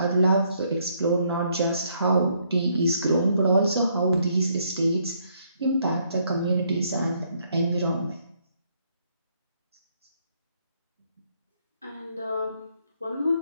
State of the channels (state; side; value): inverted; both; correlation -0.70